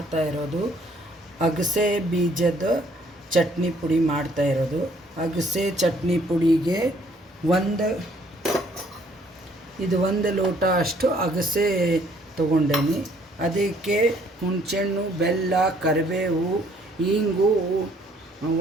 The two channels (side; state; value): both; normal; correlation 0.63